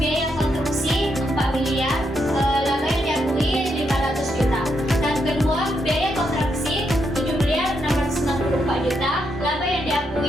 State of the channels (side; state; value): both; normal; correlation 0.80